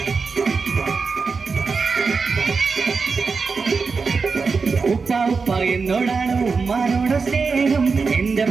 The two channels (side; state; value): left; quieter; 4.8 dB